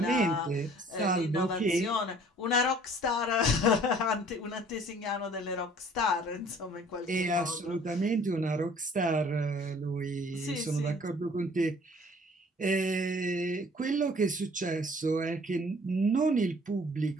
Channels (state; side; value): normal; both; correlation 0.54